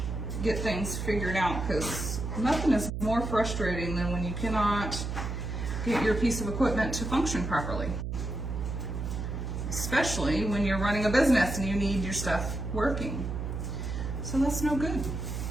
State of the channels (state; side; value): noise; right; hum, 4 dB below the sound